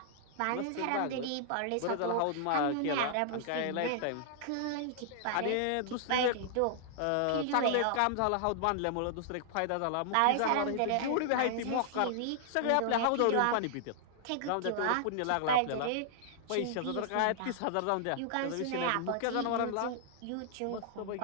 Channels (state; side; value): different; both; correlation -0.01